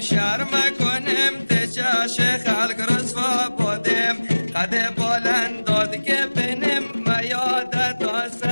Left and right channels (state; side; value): inverted; both; correlation -1.00